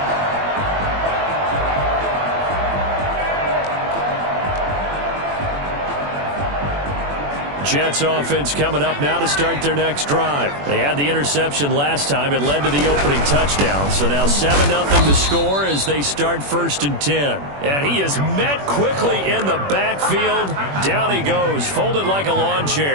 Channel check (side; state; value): left; late; 21 ms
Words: Jets offense coming up now to start their next drive. They had the interception last time. It led to the opening touchdown. So now 7-0 to score as they start 1st and 10. And he is met quickly in the backfield. Down he goes, folded like a lawn